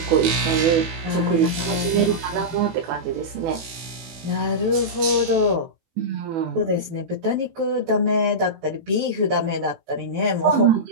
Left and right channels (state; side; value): late; left; 18 ms